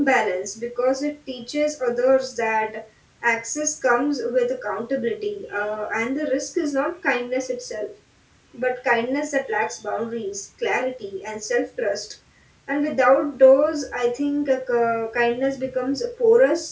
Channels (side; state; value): both; identical; correlation 1.00